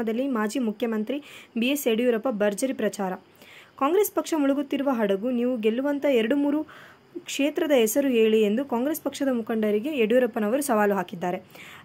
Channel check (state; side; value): identical; both; correlation 1.00